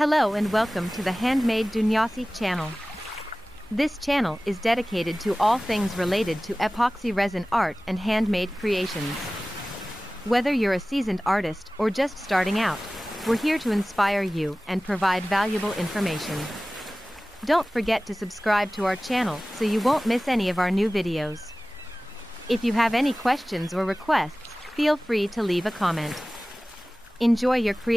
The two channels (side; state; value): both; normal; correlation 0.97